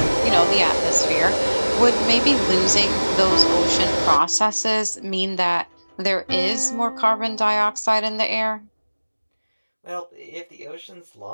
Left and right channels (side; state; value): both; inverted; correlation -1.00